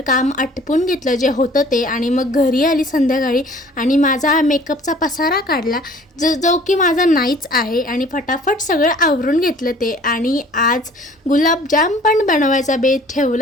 काम आटपून घेतलं जे होतं ते, आणि मग घरी आली संध्याकाळी आणि माझा मेकअपचा पसारा काढला जो की माझा नाहीच आहे, आणि फटाफट सगळं आवरून घेतलं ते। आणि आज गुलाबजाम पण बनवायचा बेत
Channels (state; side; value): normal; both; correlation 0.52